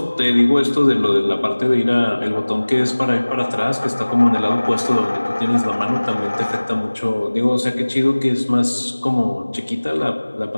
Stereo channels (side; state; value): both; inverted; correlation -1.00